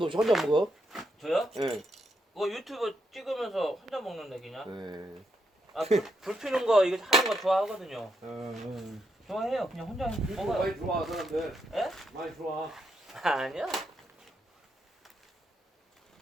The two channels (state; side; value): normal; both; correlation 0.80